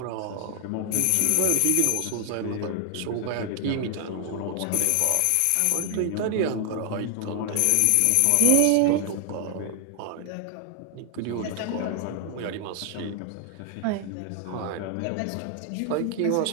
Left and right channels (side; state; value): both; different; correlation 0.00